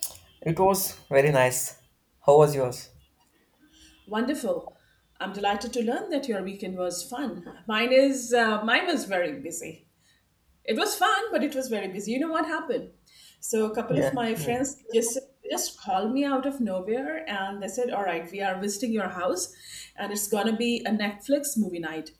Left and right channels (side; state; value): both; identical; correlation 1.00